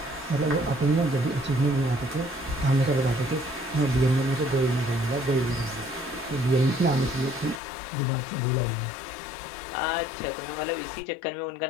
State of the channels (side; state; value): right; drops out; at 7.6 s